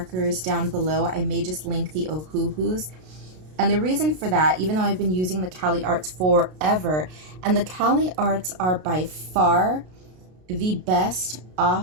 down below. I may just link the Ohuhus. And the reason for that, even though I've been using the Cali Arts forever, and the Cali Arts are by far the best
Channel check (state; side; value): late; left; 33 ms